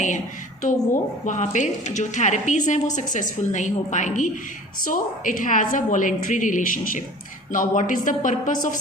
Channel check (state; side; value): normal; both; correlation 0.44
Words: है, तो वो वहाँ पे जो थेरेपीज़ हैं वो सक्सेसफुल नहीं हो पाएंगी. So it has a voluntary relationship. Now what is the purpose of